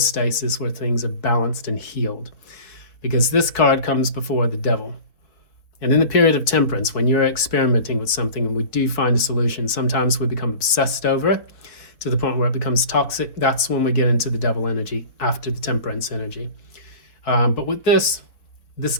where things are balanced and healed. Because this card comes before the devil. And in the period of temperance, when you're experimenting with something and we do find a solution, sometimes we become obsessed over it to the point where it becomes toxic, that's when we get into the devil energy after the temperance energy. But with this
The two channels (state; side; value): late; right; 4.6 ms